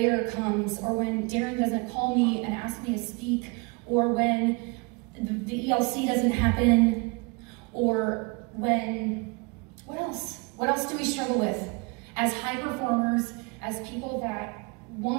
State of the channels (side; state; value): left; quieter; 29.5 dB